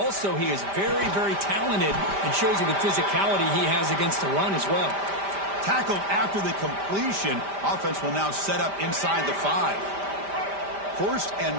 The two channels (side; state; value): left; late; 5.1 ms